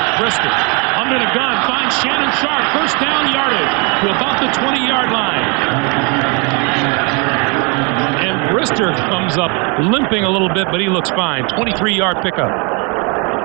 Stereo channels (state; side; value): quieter; left; 32.6 dB